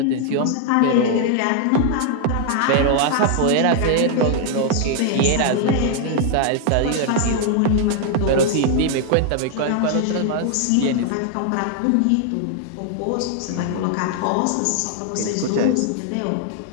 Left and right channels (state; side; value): different; both; correlation 0.00